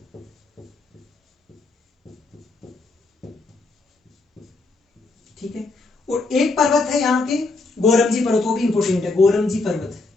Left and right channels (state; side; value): quieter; right; 3.5 dB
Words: ठीक है, और एक पर्वत है यहाँ के गोरमजी पर्वत, वो भी इंपोर्टेंट है, गोरमजी पर्वत।